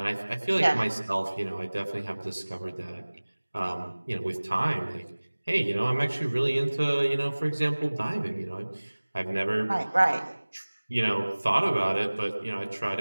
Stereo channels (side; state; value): both; inverted; correlation -1.00